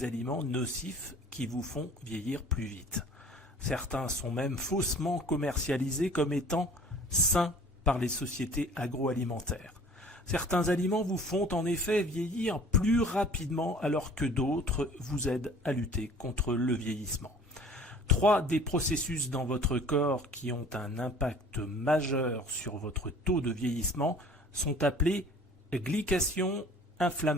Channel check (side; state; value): both; normal; correlation 0.49